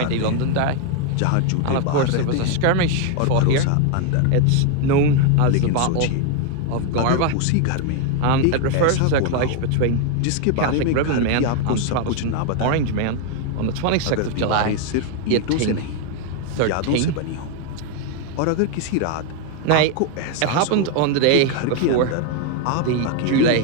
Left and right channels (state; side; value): different; both; correlation 0.01